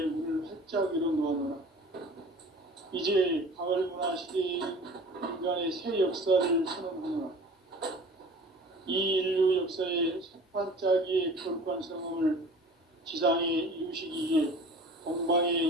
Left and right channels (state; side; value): normal; both; correlation 0.43